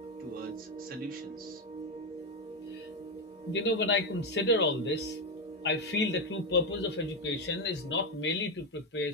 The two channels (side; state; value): both; normal; correlation 0.08